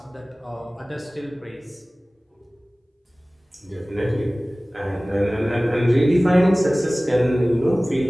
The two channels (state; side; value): normal; both; correlation 0.98